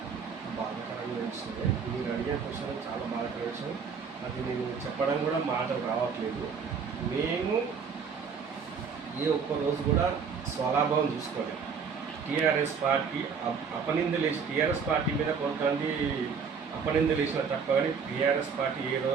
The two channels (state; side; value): quieter; left; 6.0 dB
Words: బాధాకరమైన విషయమే. మీరు అడిగే క్వశ్చన్ చాలా బాధాకరమైన విషయం. అది నేను చెప్పడం కూడా మాటలు రావట్లేదు. మేము ఏ ఒక్క రోజు కూడా స్వలాభం చూసుకోలేదు. టీఆర్ఎస్ పార్టీ అపనిందలేసి టీఆర్ఎస్ పార్టీ మీద కొంతమంది అపనిందలేసిన తప్ప కానీ టీఆర్ఎస్ పార్టీ ఏ